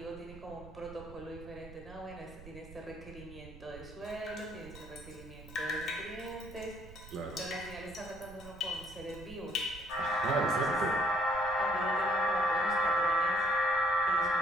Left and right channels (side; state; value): right; noise; rumble, 16 dB below the sound